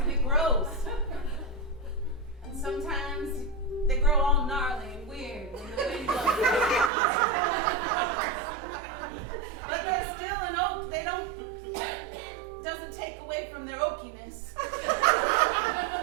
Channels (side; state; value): left; drops out; at 6.9 s